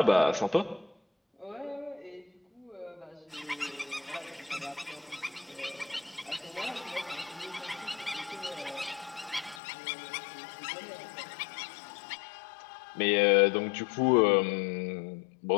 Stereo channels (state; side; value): drops out; right; at 9.6 s